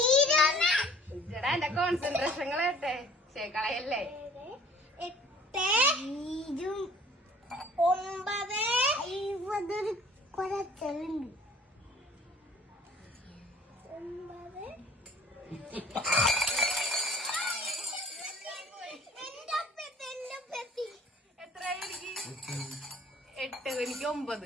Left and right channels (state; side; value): normal; both; correlation 0.52